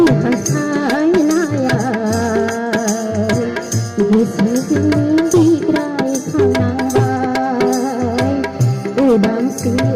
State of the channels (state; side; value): identical; both; correlation 1.00